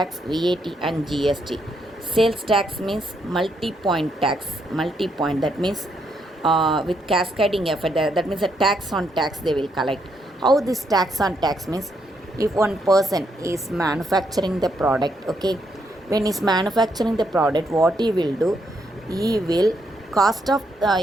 VAT and GST. Sales tax means multi-point tax, multi-point, that means with cascading effect, that means a tax on tax they will collect. How this tax on tax means, if one person is manufacturing the product, okay, when he's manufacturing the product, what he will do, he will cost of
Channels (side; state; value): both; normal; correlation 0.76